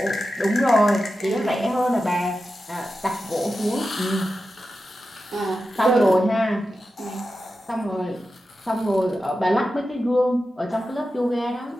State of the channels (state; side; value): normal; both; correlation 0.91